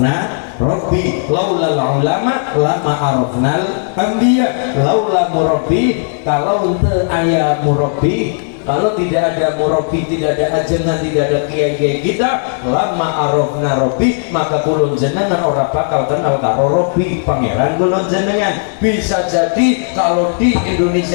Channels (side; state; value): right; silent; digital silence